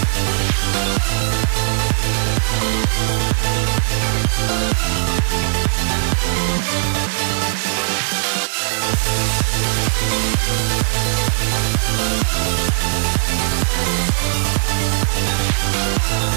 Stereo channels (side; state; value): left; silent; 67 dB below the other